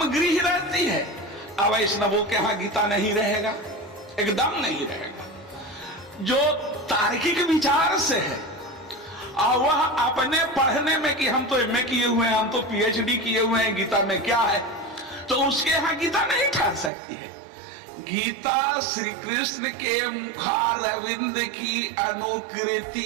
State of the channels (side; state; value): left; drops out; at 16.9 s